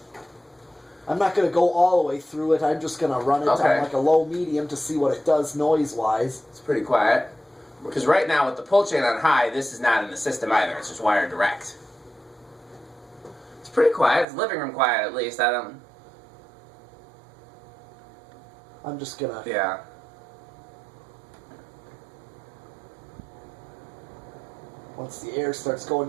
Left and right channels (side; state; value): left; drops out; at 14.2 s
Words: not gonna go all the way through it. I'm just gonna run it on like a low medium to see what it does noise wise. It's pretty quiet. Because right now with the pull chain on high, this is not in the system either. It's just wired direct. It's pretty quiet. It's living room quiet at least. I'm just gonna... Yeah. Once the air starts